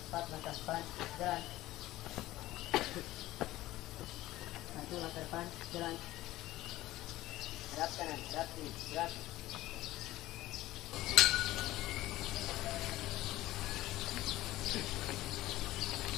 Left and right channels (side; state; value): right; quieter; 16.4 dB